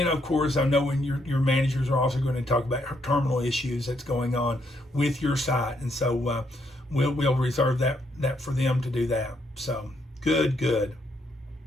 of course, I know when your managers are also going to talk about terminal issues that's going on with your site, and so we'll reserve that for them to do that. So good.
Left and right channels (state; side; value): normal; both; correlation 0.75